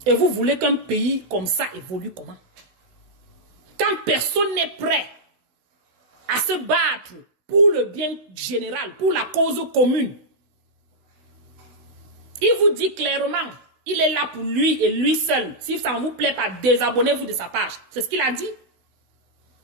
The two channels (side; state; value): left; late; 16 ms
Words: Et vous voulez qu'un pays comme ça évolue comment? Quand personne n'est prêt à se battre pour le bien général, pour la cause commune. Il vous dit clairement, il est là pour lui et lui seul. Si ça ne vous plaît pas, désabonnez-vous de sa page. C'est ce qu'il a dit.